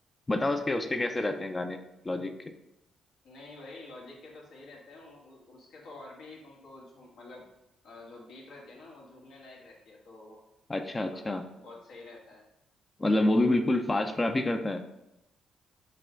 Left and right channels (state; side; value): normal; both; correlation 0.92